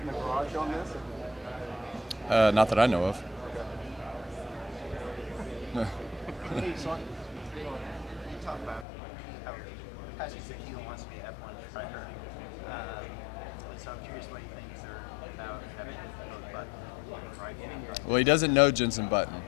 in the garage on this? Not that I know of. Hey, so you talk about how Pastor Ezekiel wants to be an F1 driver. So I'm curious what you think about having both Button driving. Well, he doesn't know Jensen Button.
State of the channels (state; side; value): drops out; right; at 8.8 s